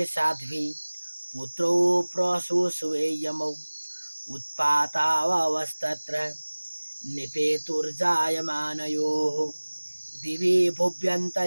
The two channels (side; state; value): both; inverted; correlation -1.00